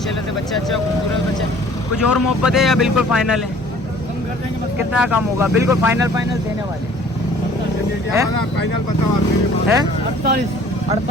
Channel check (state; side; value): normal; both; correlation 0.53